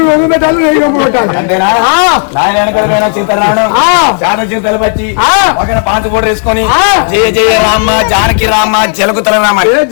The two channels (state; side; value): silent; right; 59 dB below the other